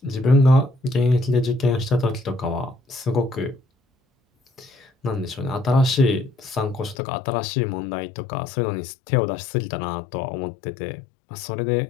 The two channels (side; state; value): right; drops out; at 7.0 s